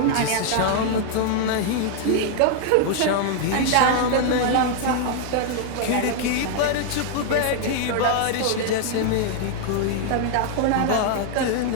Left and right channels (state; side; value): different; both; correlation 0.00